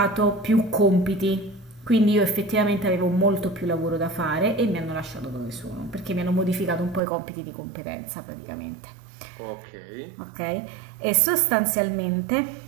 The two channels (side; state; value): left; drops out; at 7.0 s